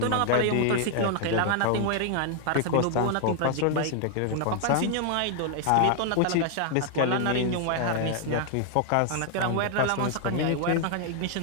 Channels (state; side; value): different; both; correlation 0.00